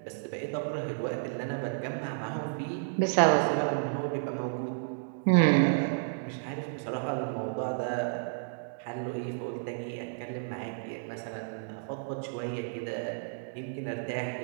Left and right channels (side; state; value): left; silent; digital silence